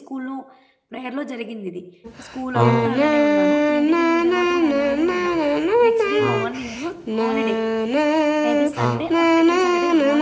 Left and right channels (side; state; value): both; identical; correlation 1.00